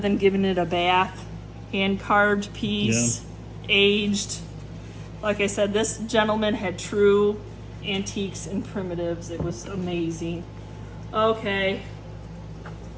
giving it a bath, hand carved piece, aged. Like I said, this gentleman had true antiques and primitives. It was amazing. Okay.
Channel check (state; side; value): identical; both; correlation 1.00